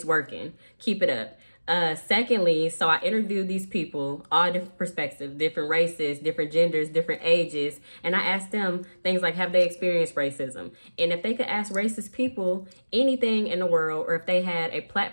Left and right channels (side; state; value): both; inverted; correlation -1.00